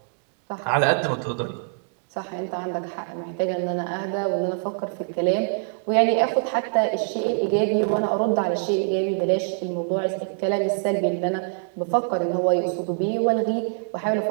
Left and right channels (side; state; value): left; silent; digital silence